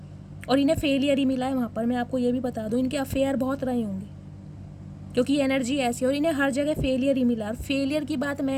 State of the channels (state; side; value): identical; both; correlation 1.00